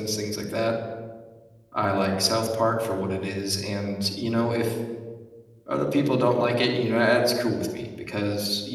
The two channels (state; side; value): identical; both; correlation 1.00